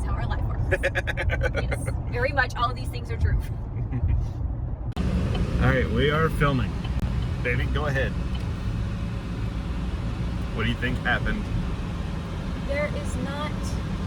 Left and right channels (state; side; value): identical; both; correlation 1.00